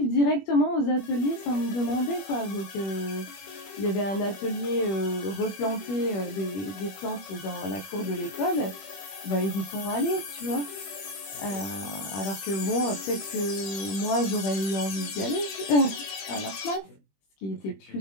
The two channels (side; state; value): right; late; 21 ms